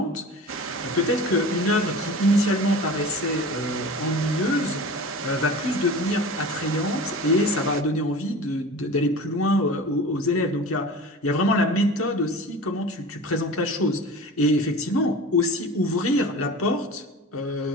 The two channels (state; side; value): normal; both; correlation 0.36